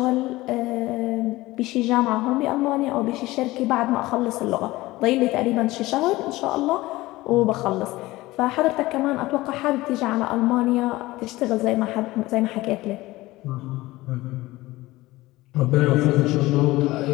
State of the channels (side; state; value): right; quieter; 18.8 dB